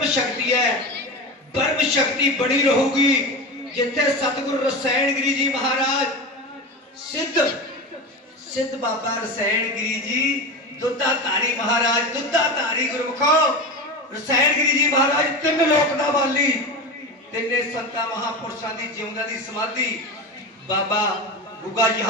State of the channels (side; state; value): both; normal; correlation 0.25